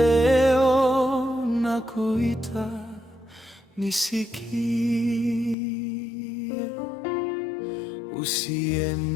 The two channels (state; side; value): drops out; right; at 5.6 s